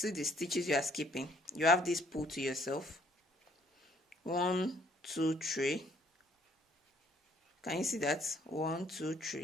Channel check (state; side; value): normal; both; correlation 0.63